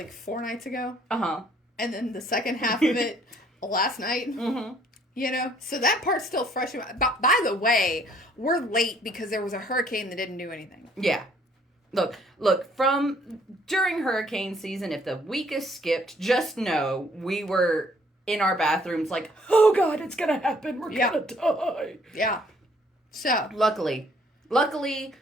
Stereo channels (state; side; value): normal; both; correlation 0.62